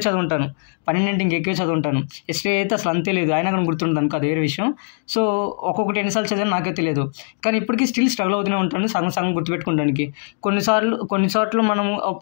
చదువుంటాను. 12 ఇంకెక్కువే చదువుంటాను. హిస్టరీ అయితే అసలు అంతే లేదు, అయినా కానీ గుర్తుంటుంది అనుకో, అది వేరే విషయం. సో ఒక్కొక్కటి ఎన్నిసార్లు చదివాను నాకే తెలియదు. కానీ ఇప్పటికీ స్టిల్ స్ట్రగుల్ అవుతూనే ఉంటాను సగం గుర్తుపెట్టుకోవడానికి. కొన్ని చోట్ల మనము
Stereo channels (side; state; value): right; silent; digital silence